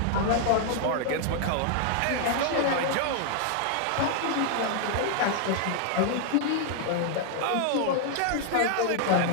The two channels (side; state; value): both; different; correlation 0.00